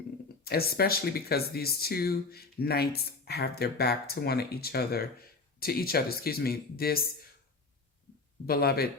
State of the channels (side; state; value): right; quieter; 3.9 dB